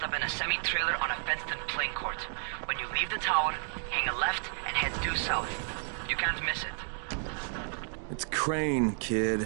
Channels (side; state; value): left; silent; 56 dB below the other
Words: up in a semi-trailer on a fenced-in playing court. When you leave the tower, hang a left and head due south. You can't miss it. It's Crane, kid.